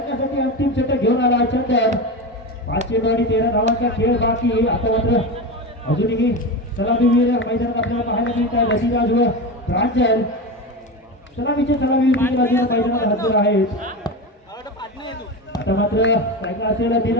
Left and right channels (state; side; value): normal; both; correlation 0.21